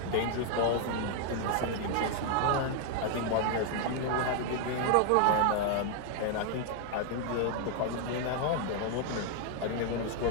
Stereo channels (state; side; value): different; both; correlation 0.00